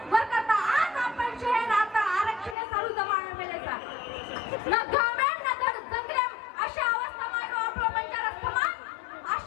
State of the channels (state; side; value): drops out; right; at 2.6 s